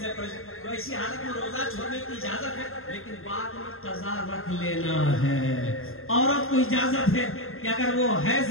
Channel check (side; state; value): right; late; 0.61 ms